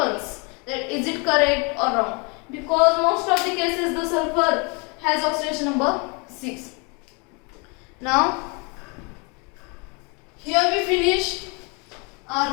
that is it correct or wrong, because most of the cases the sulfur has oxidation number 6. Now here we finish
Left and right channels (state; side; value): quieter; right; 32.0 dB